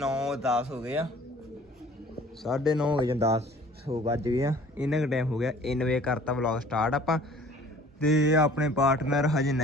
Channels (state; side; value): normal; both; correlation 0.51